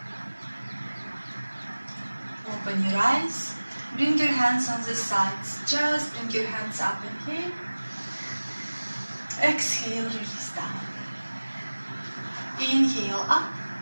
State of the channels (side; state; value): both; inverted; correlation -1.00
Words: Open your eyes, bring your hands on the sides, just bring your hands up, inhale, exhale, release down, inhale up,